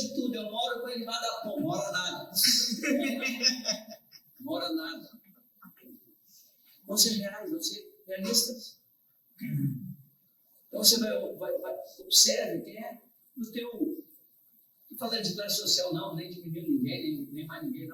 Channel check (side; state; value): both; identical; correlation 1.00